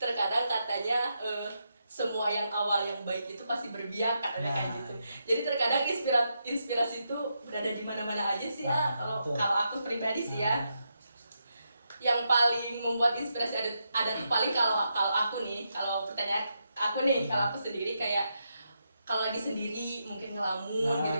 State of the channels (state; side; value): inverted; both; correlation -0.83